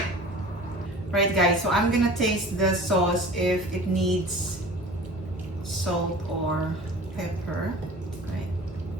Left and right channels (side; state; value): both; normal; correlation 0.41